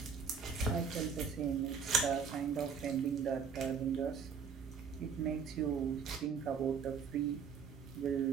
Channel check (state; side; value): quieter; left; 6.3 dB